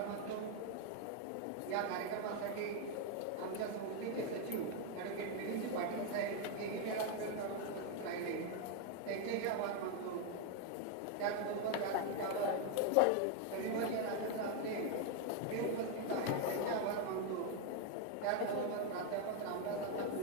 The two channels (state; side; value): different; both; correlation 0.01